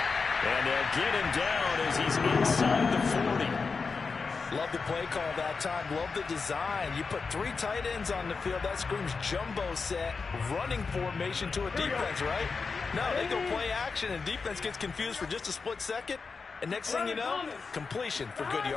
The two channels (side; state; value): right; quieter; 4.8 dB